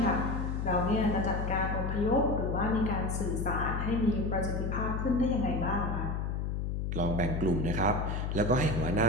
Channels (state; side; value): noise; left; hum, 1 dB below the sound